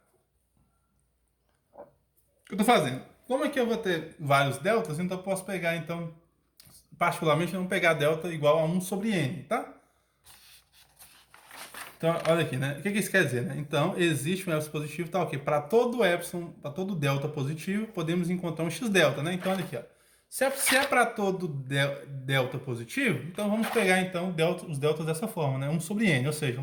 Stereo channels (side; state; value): both; identical; correlation 1.00